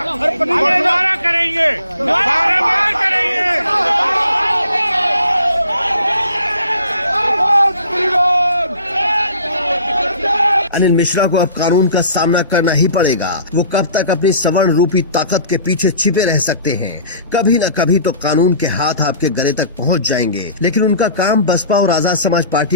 दोबारा करेंगे, बार करेंगे। अनिल मिश्रा को अब कानून का सामना करना ही पड़ेगा। वो कब तक अपनी सवर्ण रूपी ताकत के पीछे छिपे रह सकते हैं। कभी न कभी तो कानून के हाथ आपके गले तक पहुंच जाएंगे। लेकिन उनका काम बसपा और आजाद समाज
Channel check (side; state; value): both; inverted; correlation -0.49